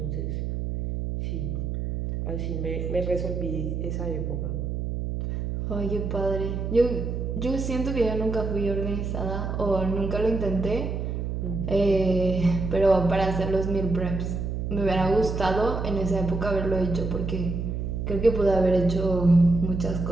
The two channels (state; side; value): noise; right; hum, 3 dB below the sound